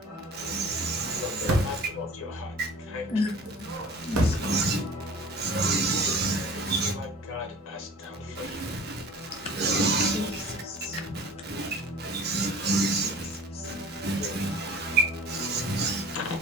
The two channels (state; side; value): normal; both; correlation 0.43